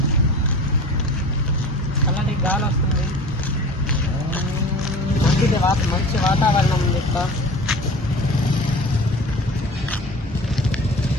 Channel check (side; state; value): both; normal; correlation 0.39